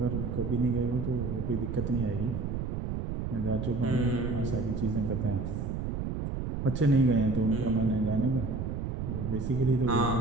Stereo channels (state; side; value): noise; right; rumble, 3 dB below the sound